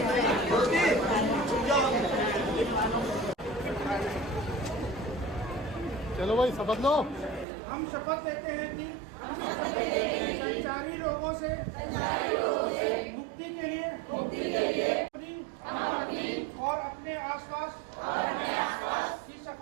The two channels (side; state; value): left; drops out; at 7.5 s